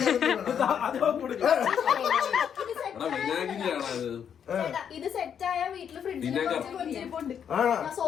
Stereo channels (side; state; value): right; quieter; 8.1 dB